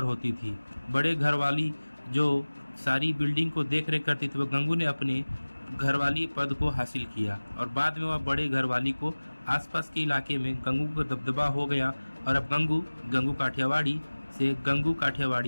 होती थी। बड़े घर वाली जो सारी बिल्डिंग को देख रेख करती थी, वह गंगू ने अपने घरवाली पद को हासिल किया और बाद में वह बड़े घरवाली को आसपास के इलाके में गंगू का दबदबा हो गया और अब गंगू काठियावाड़ी से गंगू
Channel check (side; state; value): both; inverted; correlation -1.00